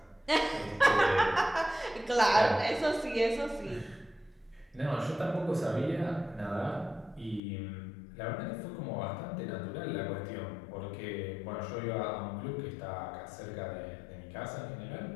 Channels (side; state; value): right; drops out; at 7.4 s